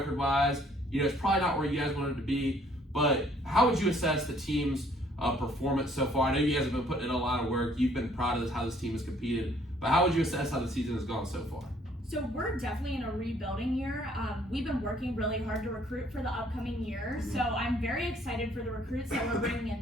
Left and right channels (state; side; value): normal; both; correlation 0.62